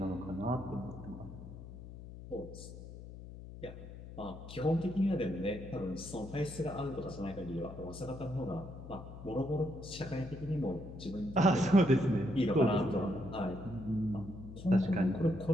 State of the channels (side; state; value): left; noise; hum, 13 dB below the sound